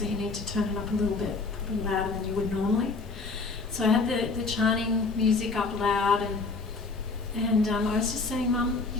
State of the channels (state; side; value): quieter; right; 4.0 dB